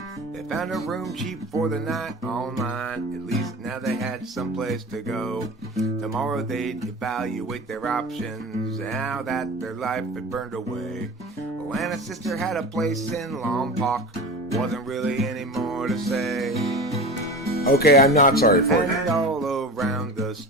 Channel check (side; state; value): both; normal; correlation 0.32